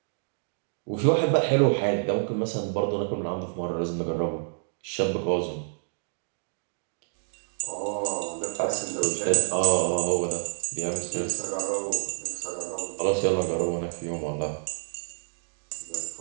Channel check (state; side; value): silent; left; digital silence